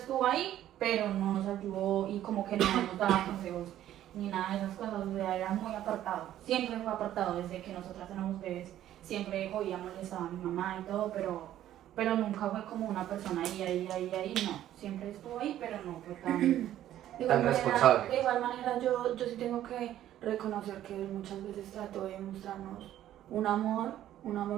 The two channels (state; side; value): quieter; left; 12.4 dB